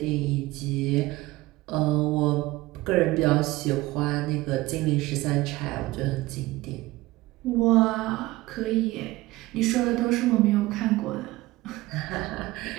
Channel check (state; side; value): quieter; left; 19.1 dB